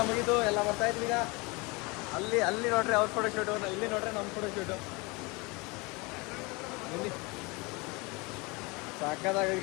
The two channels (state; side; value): quieter; right; 27.0 dB